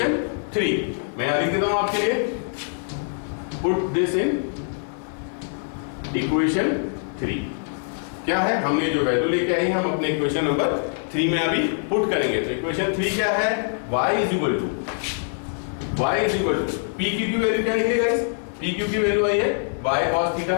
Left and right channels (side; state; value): right; silent; 63 dB below the other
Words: 3। मैं यहाँ लिख देता हूँ आपके लिए, पुट दिस इन इक्वेशन 3। क्या है, हमने जो वैल्यू लेके आई हम अपने इक्वेशन नंबर 3 में अभी पुट करेंगे। तो इक्वेशन 3 क्या है, y is equal to P Q की वैल्यू क्या निकलेगा गाइस, पी क्यू की वैल्यू आई है y cos theta,